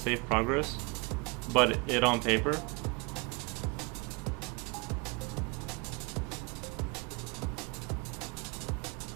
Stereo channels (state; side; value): quieter; left; 28.6 dB